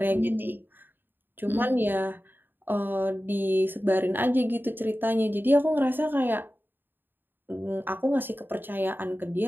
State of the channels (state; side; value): late; left; 0.094 ms